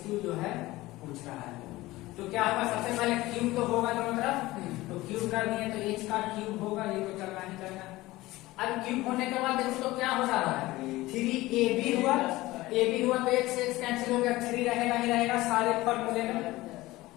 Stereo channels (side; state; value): right; quieter; 18.6 dB